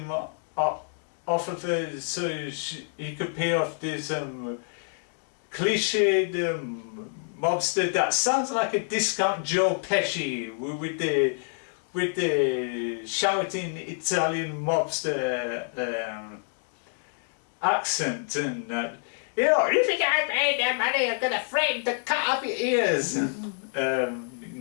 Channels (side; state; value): right; silent; digital silence